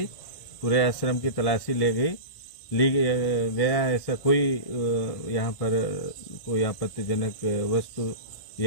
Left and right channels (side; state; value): right; late; 1.9 ms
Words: पूरे आश्रम की तलाशी ली गया। ऐसा कोई यहाँ पर कोई आपत्तिजनक वस्तु